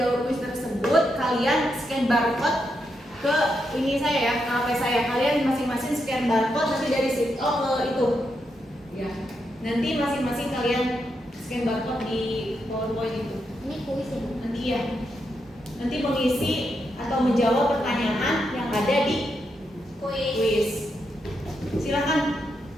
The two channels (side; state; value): both; normal; correlation 0.83